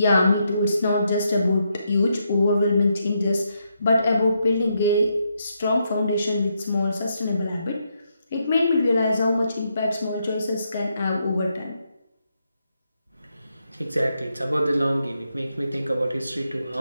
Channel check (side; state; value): both; inverted; correlation -0.80